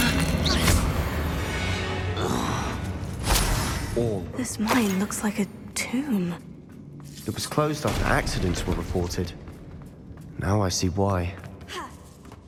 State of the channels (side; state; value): both; identical; correlation 1.00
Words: All. This mine looks like a tomb. It was closed after accidents were reported. Now I see why.